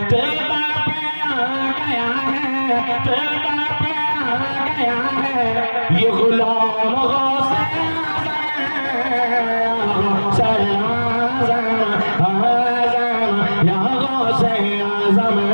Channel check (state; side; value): inverted; both; correlation -1.00